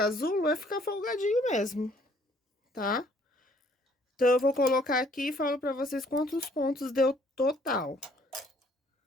é ficar folgadinho mesmo, tá? Então, eu vou colocar aqui e falo pra vocês quantos pontos deu total.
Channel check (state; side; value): normal; both; correlation 0.62